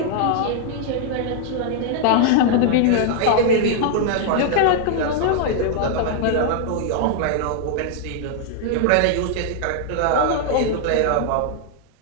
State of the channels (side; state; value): both; different; correlation 0.00